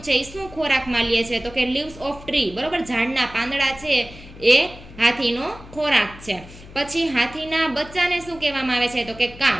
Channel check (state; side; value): noise; left; hum, 18 dB below the sound